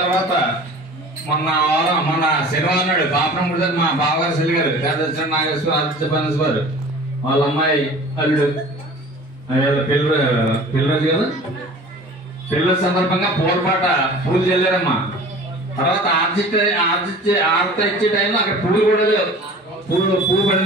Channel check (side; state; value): both; normal; correlation 0.43